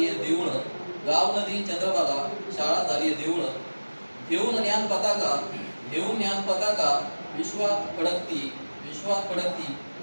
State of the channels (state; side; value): inverted; both; correlation -1.00